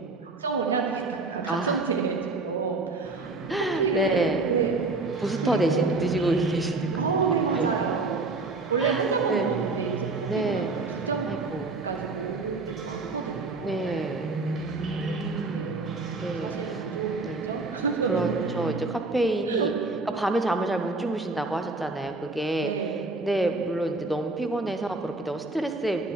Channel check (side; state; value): left; quieter; 3.4 dB